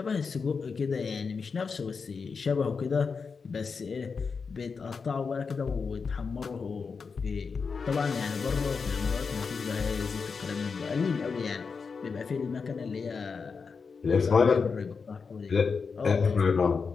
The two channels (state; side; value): quieter; right; 5.2 dB